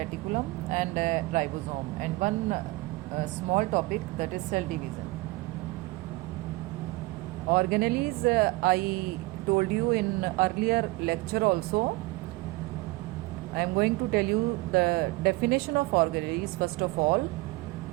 and ribosome, and one small topic, that is cell division. Organelles, I told you in earlier lecture also. I am going to tell you the definition of organelles. First of all,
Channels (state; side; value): quieter; left; 21.9 dB